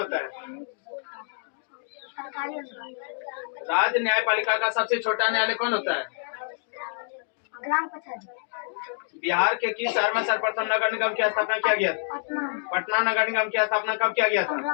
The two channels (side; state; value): right; silent; digital silence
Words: है? सरकारी अनुदान। राज्य न्यायपालिका का सबसे छोटा न्यायालय कौन होता है? ग्राम कचहरी। बिहार के किस शहर में सर्वप्रथम नगर निगम की स्थापना किया गया था? पटना। पटना नगर निगम की स्थापना कब किया गया था? 15